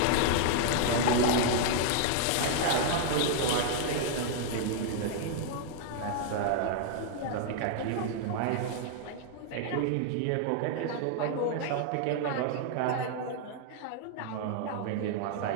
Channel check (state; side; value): different; both; correlation -0.01